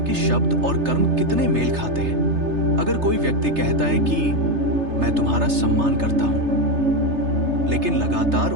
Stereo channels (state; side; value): late; left; 3.3 ms